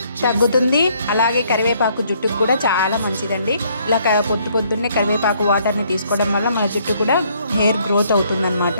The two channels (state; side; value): inverted; both; correlation -0.66